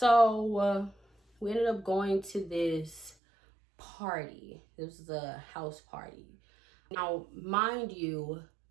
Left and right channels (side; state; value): left; drops out; at 3.2 s